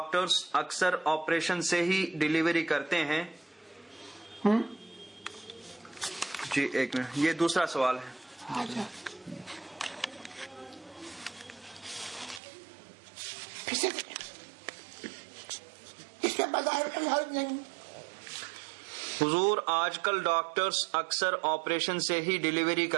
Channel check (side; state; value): left; drops out; at 12.4 s